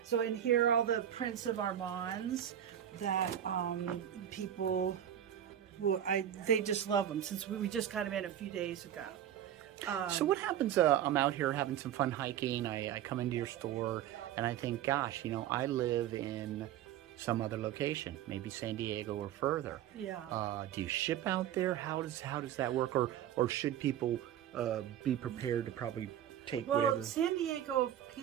So in here are all the prints of Armands that people they just love them, since we just got them in a few days ago. So what happens, I'm out here having some fun hiking, I come into your store, and I think, gosh, you know, I live in some other location, maybe San Diego or further. Yeah. Do you ship out there? How does that work? Or should people be prepared to probably take whatever? San Diego,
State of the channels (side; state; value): left; quieter; 10.7 dB